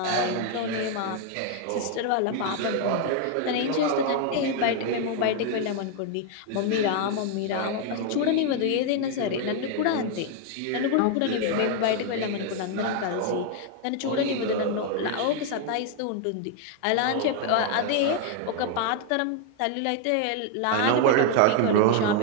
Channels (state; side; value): different; both; correlation 0.00